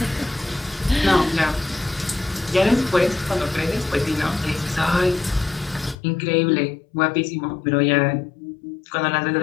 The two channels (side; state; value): right; drops out; at 6.0 s